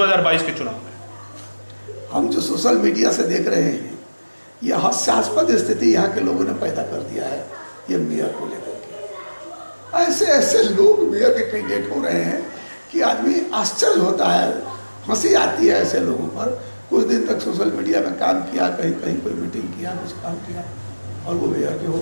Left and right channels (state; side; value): inverted; both; correlation -1.00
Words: के चुनाव में? हम जो सोशल मीडिया से देख रहे हैं, यह हास्यास्पद स्थिति यहाँ के लोगों ने पैदा कर दिया है ये मेयर को लेकर के। ऐसे ऐसे लोग मेयर के कैंडिडेट हो रहे हैं कि आदमी आश्चर्य होता है, हंसी आती है ऐसे लोगों पर। कुछ दिन तक सोशल मीडिया में काम किया, कहीं कहीं कोई मीटिंग किया, कुछ काम किया, और वो मेयर के हो